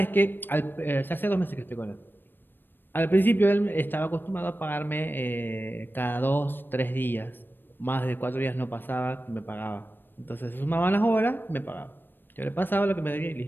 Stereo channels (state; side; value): late; right; 0.095 ms